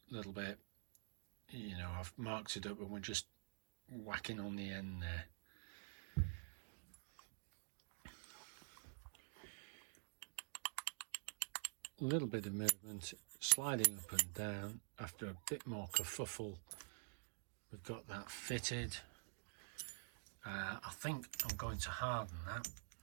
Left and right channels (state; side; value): silent; left; digital silence